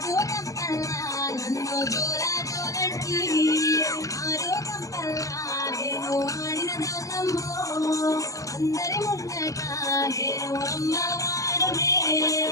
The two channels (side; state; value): right; late; 0.16 ms